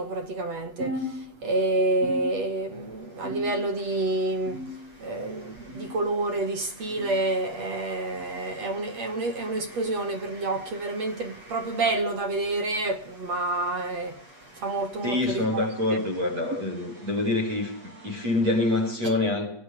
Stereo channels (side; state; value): left; late; 8.3 ms